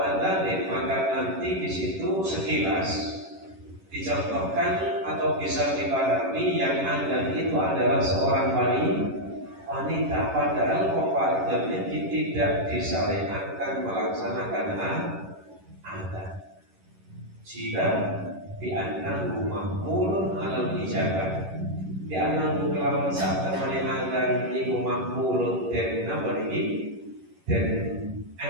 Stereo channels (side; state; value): left; late; 11 ms